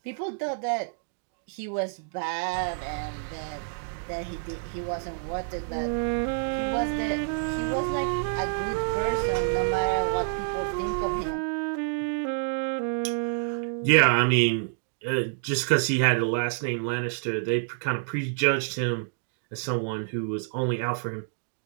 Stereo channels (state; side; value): silent; left; digital silence